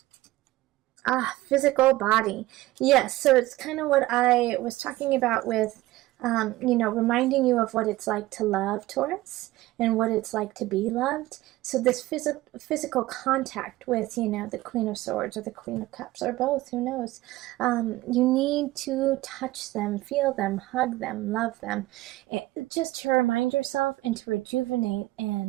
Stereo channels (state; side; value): quieter; left; 17.7 dB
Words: Physical body. Yes, so it's kind of what I was talking about with, reminding you of what it's like to love, Taurus, and what it's like to be loved. So this physical contact with, the Queen of Swords or the Queen of Cups, or both, who knows. You need to touch them, feel them, hug them, love them, just to remind yourself and to rejuvenate